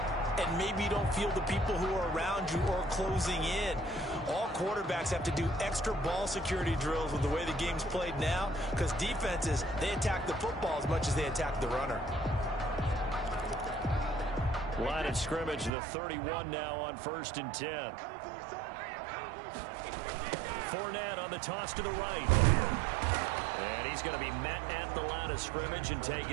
and maybe you don't feel the people who are around you or closing in. All quarterbacks have to do extra ball security drills with the way the game's played now, because defenses, they attack the football as much as they attack the runner. Line of scrimmage, the 31 now on 1st and 10. Fournette on the toss to the right. And he's going to be met at the line of scrimmage and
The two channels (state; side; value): drops out; left; at 15.7 s